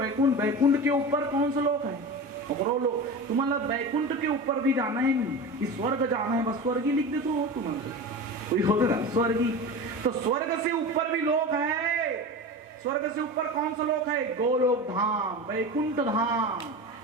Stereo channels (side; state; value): both; normal; correlation 0.29